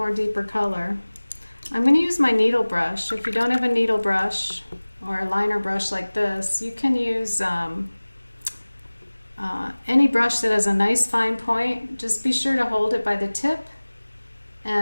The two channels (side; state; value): both; inverted; correlation -1.00